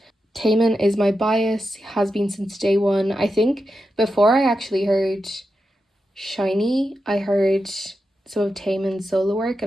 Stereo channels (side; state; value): both; normal; correlation 0.88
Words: Taemin is my bias, has been since day one. I think before I actually heard shinee, I heard some of Taemin's solo work